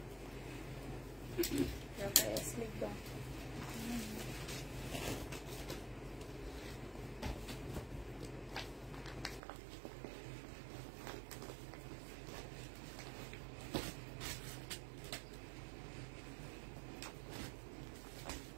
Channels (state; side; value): drops out; left; at 9.4 s